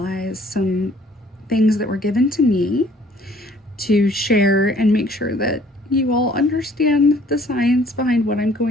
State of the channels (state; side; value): normal; both; correlation 0.58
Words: some things that were given to me to share and make sure that you all understand the science behind what I'm